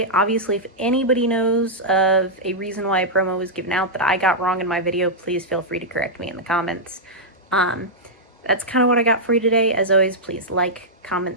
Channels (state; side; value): normal; both; correlation -0.08